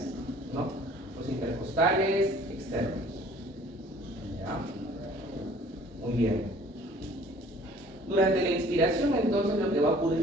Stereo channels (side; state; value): both; normal; correlation 0.53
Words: ¿no? Los intercostales externos. ¿Ya? Muy bien. Durante la inspiración, entonces, lo que va a